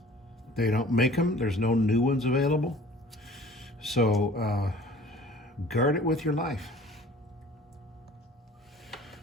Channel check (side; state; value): both; normal; correlation 0.48